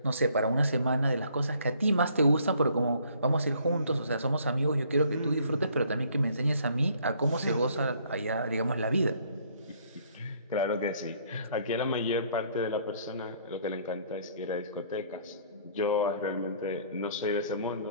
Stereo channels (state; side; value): inverted; both; correlation -0.61